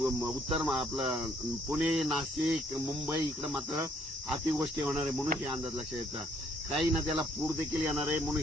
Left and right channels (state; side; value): normal; both; correlation 0.66